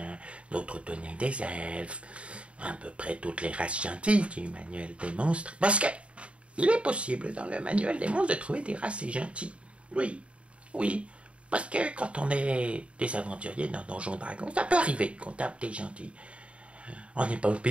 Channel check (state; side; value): late; left; 0.061 ms